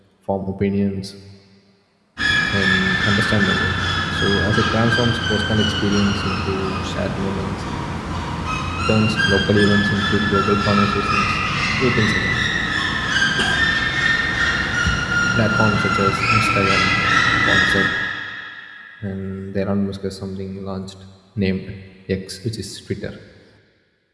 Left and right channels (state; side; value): identical; both; correlation 1.00